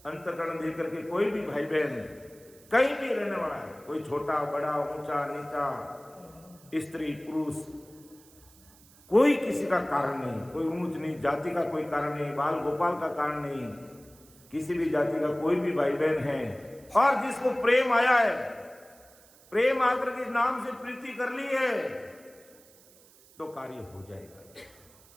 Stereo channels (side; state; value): right; noise; hiss, 26 dB below the sound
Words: अंतकरण देकर के कोई भी भाई बहन कहीं भी रहने वाला है, कोई छोटा बड़ा ऊंचा नीचा, स्त्री पुरुष, कोई किसी का कारण नहीं, कोई ऊंच नीच जाति का कोई कारण नहीं, बाल गोपाल का कारण नहीं, किसी भी जाति का कोई भी भाई बहन है और जिसको प्रेम आया है, प्रेम आकर के नाम से प्रीति कर ली है तो कार्य हो जाएगा।